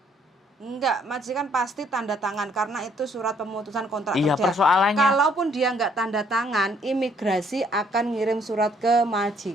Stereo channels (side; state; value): both; normal; correlation 0.65